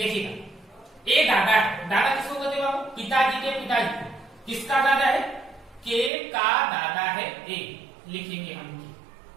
ए दादा है, दादा किसको कहते हैं बाबू? पिताजी के पिताजी को। किसका दादा है? के का दादा है ए, लिखेंगे हम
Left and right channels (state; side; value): drops out; left; at 6.1 s